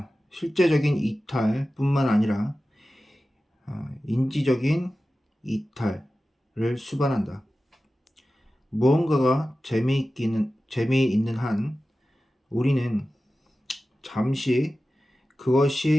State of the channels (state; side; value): normal; both; correlation 0.95